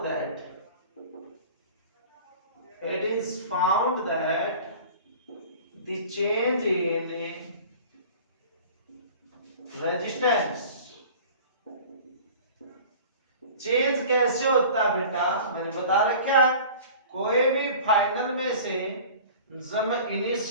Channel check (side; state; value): both; inverted; correlation -0.42